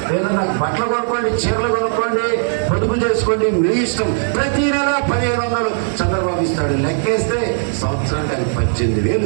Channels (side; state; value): left; silent; digital silence